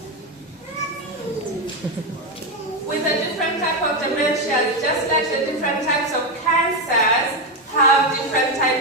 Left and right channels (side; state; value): both; normal; correlation 0.08